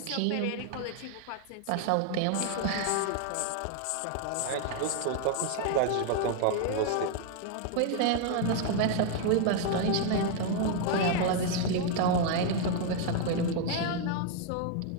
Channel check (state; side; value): different; both; correlation 0.00